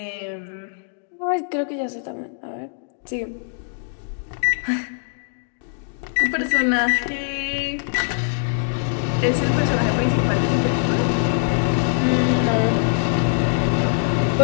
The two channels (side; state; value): right; silent; digital silence